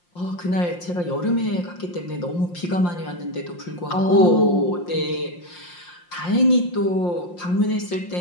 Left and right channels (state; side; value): late; right; 5.7 ms